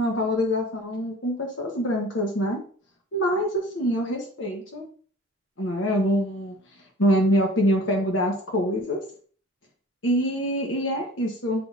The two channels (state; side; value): normal; both; correlation 0.45